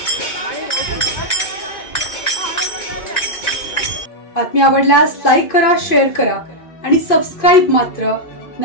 बातमी आवडल्यास लाईक करा, शेअर करा आणि सबस्क्राईब मात्र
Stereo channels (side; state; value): right; late; 2.5 ms